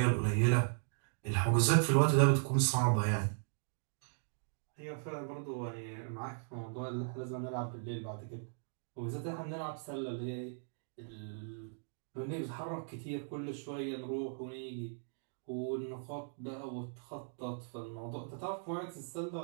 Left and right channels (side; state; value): left; silent; digital silence